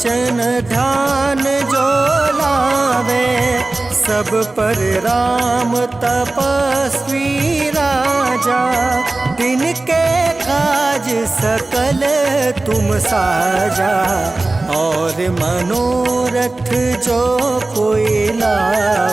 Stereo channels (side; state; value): left; quieter; 3.1 dB